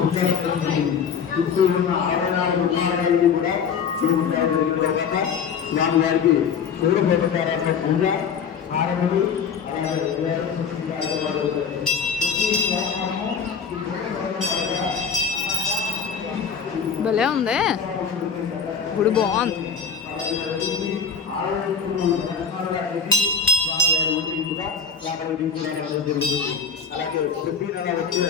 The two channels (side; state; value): right; quieter; 6.4 dB